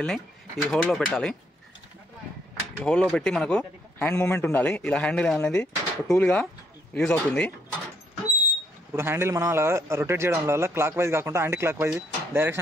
ఈ హోల్లో పెట్టాలి. ఈ హోల్లో పెట్టి మనకు హ్యాండ్ మూమెంట్ ఉండాలి. ఇలా హ్యాండిల్ అనేది టూల్గా యూజ్ అవుతుంది. ఇప్పుడు హ్యాండిల్ మనం అలా రొటేట్ చేయడం వల్ల క్లాక్ వైజ్ కాకుండా యాంటీ క్లాక్ వైజ్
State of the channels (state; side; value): normal; both; correlation 0.72